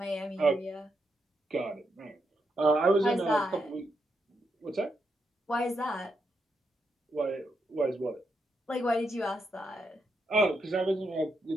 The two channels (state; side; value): normal; both; correlation 0.82